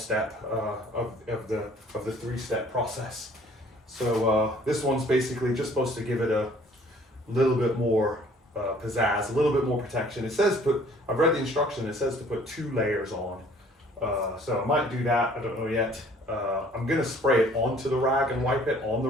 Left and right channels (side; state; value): both; normal; correlation 0.56